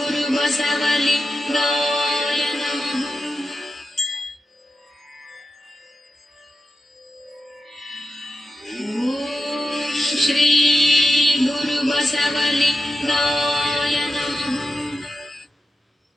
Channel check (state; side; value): normal; both; correlation 0.90